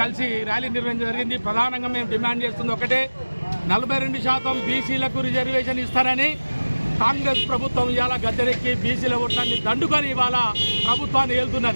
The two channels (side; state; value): both; inverted; correlation -1.00